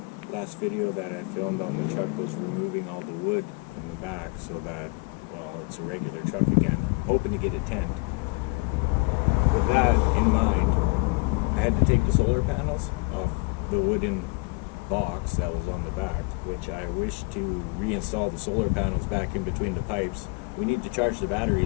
video that I filmed on the truck was removing all the wood from the back so that, well, it's a regular truck again. I'm hoping to get a tent. With that in mind, I had to take the solar panels off the wooden box that was on the back, which I wish to reinstall the solar panels back in between the pipes. We need to charge the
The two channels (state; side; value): quieter; right; 28.7 dB